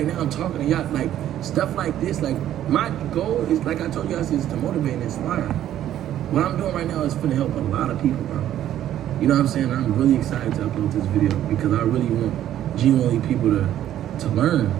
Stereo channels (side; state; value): left; quieter; 11.8 dB